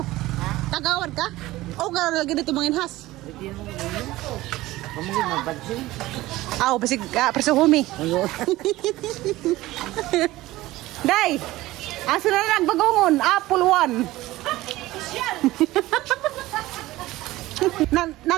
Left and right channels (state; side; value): quieter; left; 17.5 dB